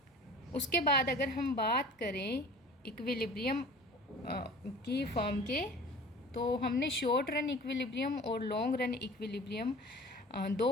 उसके बाद अगर हम बात करें इक्विलिब्रियम की फर्म के, तो हमने शॉर्ट रन इक्विलिब्रियम और लॉन्ग रन इक्विलिब्रियम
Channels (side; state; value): both; normal; correlation 0.43